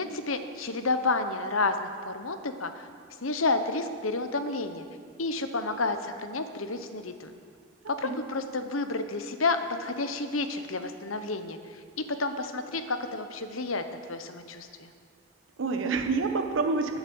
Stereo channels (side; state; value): both; normal; correlation -0.19